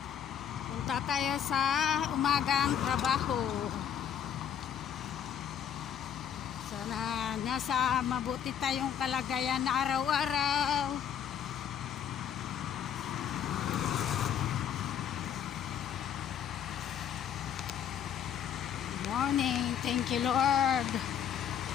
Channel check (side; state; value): right; quieter; 8.9 dB